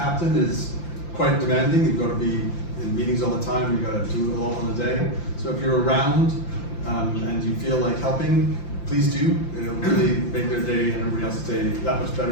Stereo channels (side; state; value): right; late; 5.8 ms